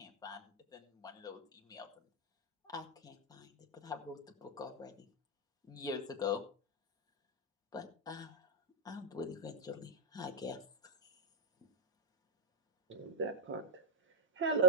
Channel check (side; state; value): both; normal; correlation -0.02